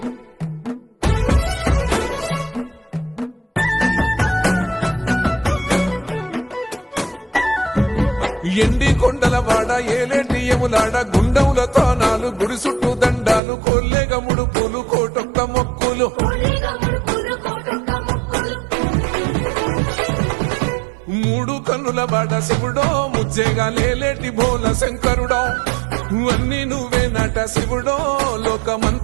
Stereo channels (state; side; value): drops out; left; at 13.4 s